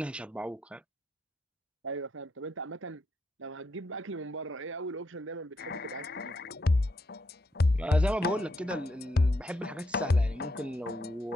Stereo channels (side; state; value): both; normal; correlation 0.80